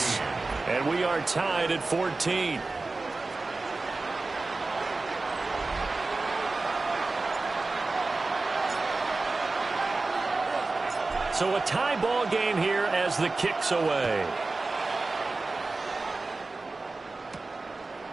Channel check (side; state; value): left; quieter; 3.5 dB